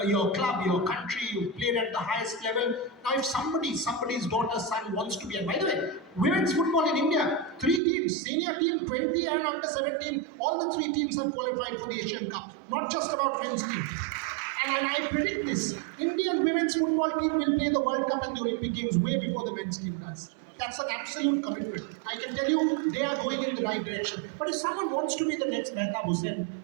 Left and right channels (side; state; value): left; drops out; at 7.8 s